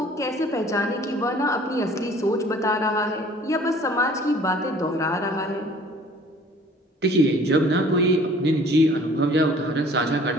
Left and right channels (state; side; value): normal; both; correlation 0.52